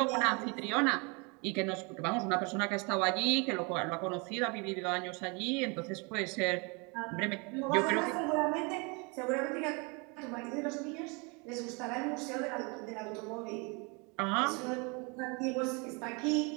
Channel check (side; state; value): left; quieter; 30.9 dB